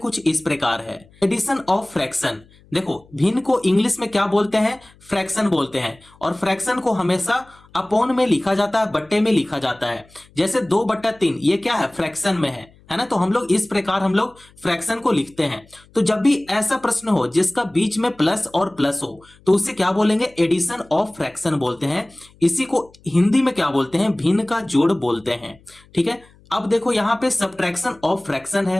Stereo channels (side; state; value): left; noise; hum, 28 dB below the sound